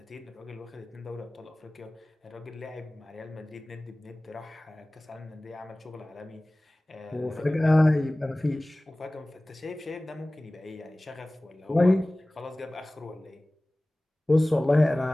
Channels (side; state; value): both; normal; correlation 0.98